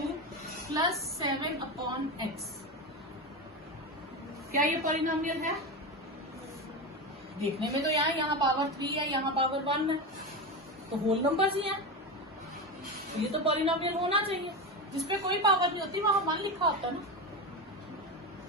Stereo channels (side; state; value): both; normal; correlation 0.19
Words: प्लस 7/x। क्या ये पॉलिनोमियल है? देखने में तो यहाँ पावर 3 है, यहाँ पावर 1 है, तो होल नंबर्स ही हैं। तो ये तो पॉलिनोमियल होना चाहिए। जिसपे कोई पावर नहीं होती वहां 1 लिखा होता ना,